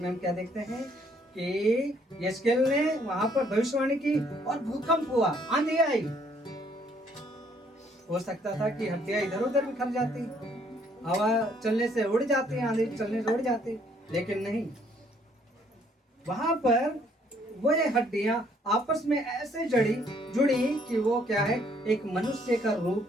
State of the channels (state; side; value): normal; both; correlation 0.65